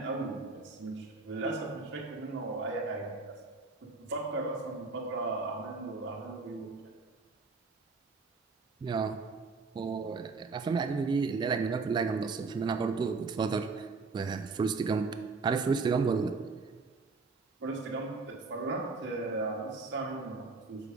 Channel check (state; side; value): quieter; left; 4.2 dB